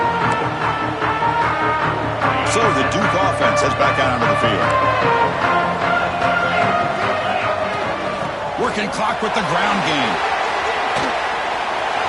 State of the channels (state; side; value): identical; both; correlation 1.00